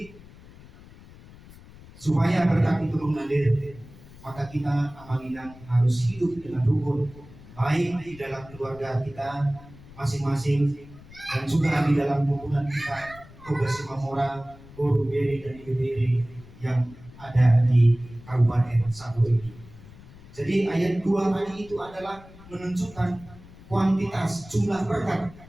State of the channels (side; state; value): left; noise; rumble, 20 dB below the sound